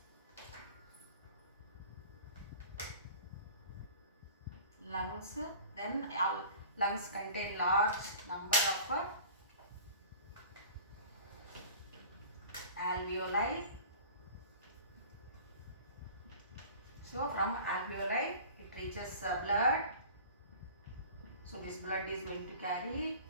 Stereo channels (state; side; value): inverted; both; correlation -0.42